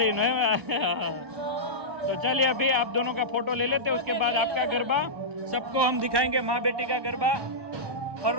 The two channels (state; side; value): late; left; 1.3 ms